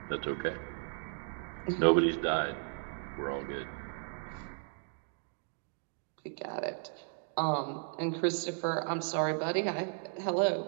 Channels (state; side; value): silent; left; 54 dB below the other